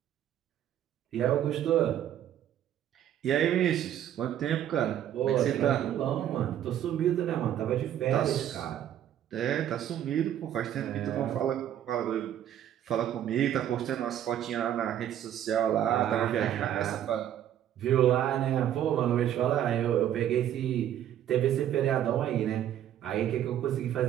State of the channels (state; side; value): quieter; left; 10.9 dB